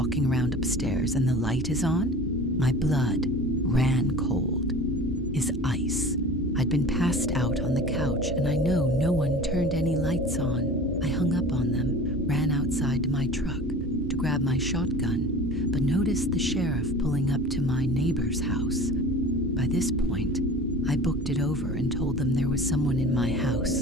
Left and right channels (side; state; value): both; normal; correlation 0.39